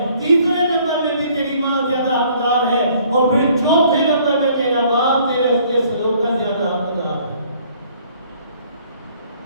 تیسرے نمبر میں بھی تیری ماں زیادہ حقدار ہے، اور پھر چوتھے نمبر میں تیرا باپ تیرے حسن سلوک کا زیادہ حقدار ہے۔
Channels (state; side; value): inverted; both; correlation -0.59